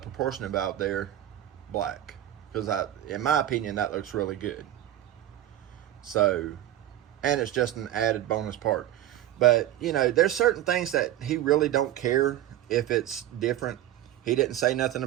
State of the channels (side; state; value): left; quieter; 12.9 dB